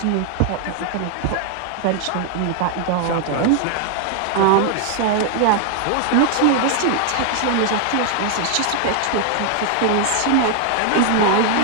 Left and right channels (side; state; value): both; different; correlation 0.00